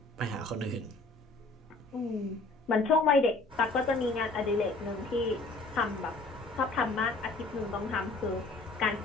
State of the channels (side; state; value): right; quieter; 3.3 dB